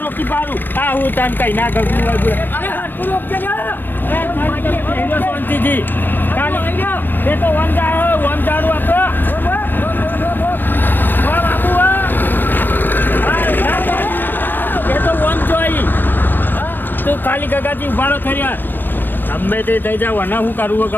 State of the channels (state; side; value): late; right; 0.093 ms